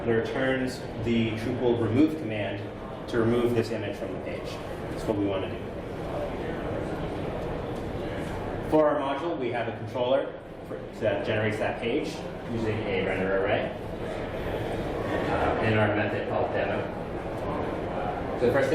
it returns the Drupal remove command to remove this image from the page. That's what we want to do. For our module, we have a controller that generates that page using a render array and our method called demo. So the first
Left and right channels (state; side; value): identical; both; correlation 1.00